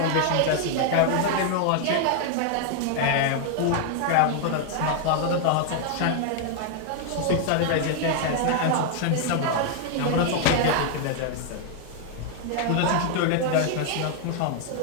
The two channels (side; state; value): both; different; correlation 0.00